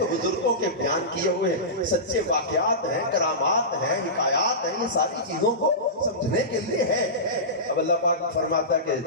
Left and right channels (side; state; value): both; normal; correlation -0.19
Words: بزرگوں کے بیان کیے ہوئے سچے واقعات ہیں, کرامات ہیں, حکایات ہیں, یہ ساری چیزوں کو سمجھنے کے لیے ہے. اب اللہ پاک فرماتا ہے کہ